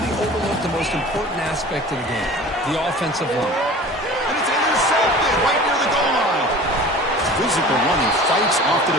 we overlook the most important aspect of the game, the offensive line. And it's intercepted right near the goal line. Physical running fights off the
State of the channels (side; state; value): both; normal; correlation 0.41